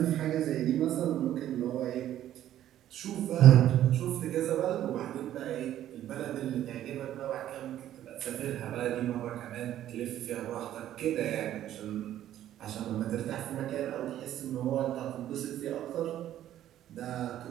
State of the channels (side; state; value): left; quieter; 12.1 dB